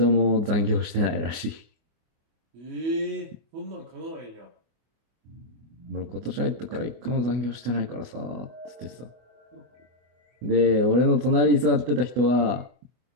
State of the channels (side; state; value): left; late; 25 ms